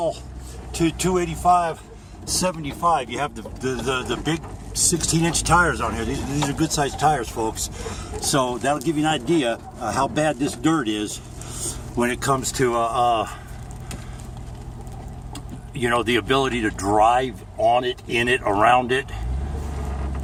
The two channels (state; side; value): identical; both; correlation 1.00